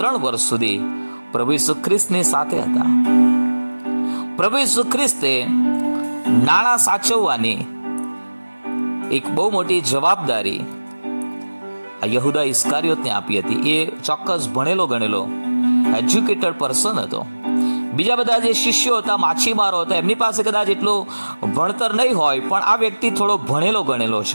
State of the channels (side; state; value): both; inverted; correlation -1.00